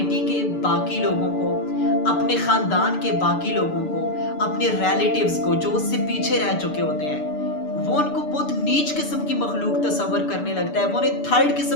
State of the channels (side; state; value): right; late; 6.8 ms